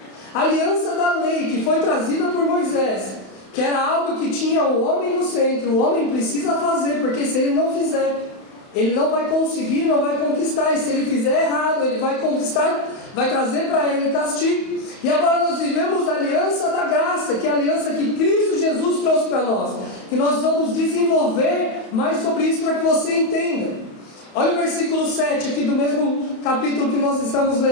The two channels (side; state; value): right; late; 31 ms